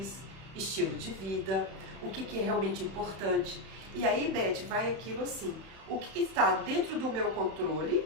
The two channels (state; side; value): late; left; 31 ms